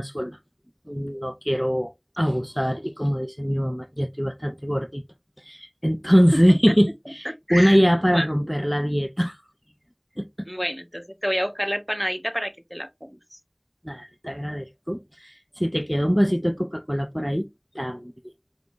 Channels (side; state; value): both; identical; correlation 1.00